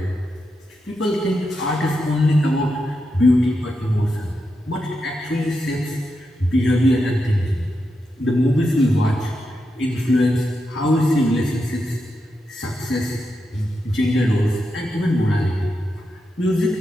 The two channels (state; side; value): normal; both; correlation 0.86